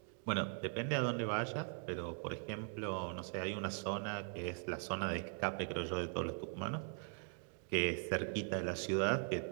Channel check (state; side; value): silent; left; 51 dB below the other